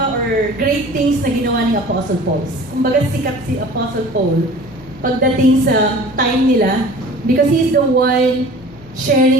or great things na ginawa ni Apostle Paul. Kumbaga sikat si Apostle Paul pagdating sa time nila because he is the one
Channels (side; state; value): both; normal; correlation 0.44